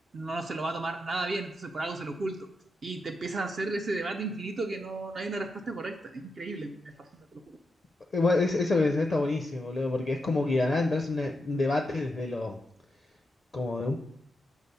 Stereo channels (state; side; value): normal; both; correlation 0.85